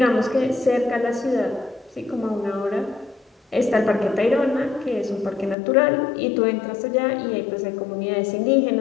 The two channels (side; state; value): right; drops out; at 5.6 s